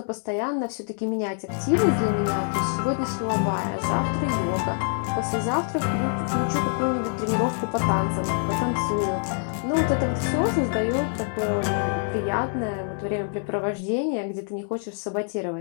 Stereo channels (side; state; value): right; silent; 61 dB below the other